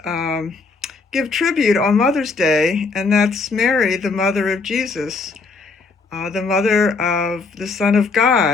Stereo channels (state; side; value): quieter; right; 4.2 dB